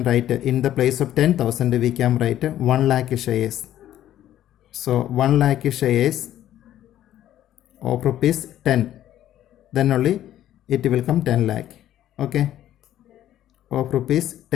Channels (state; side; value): quieter; right; 12.3 dB